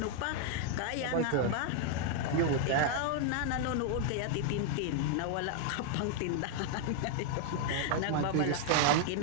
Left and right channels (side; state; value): both; different; correlation 0.00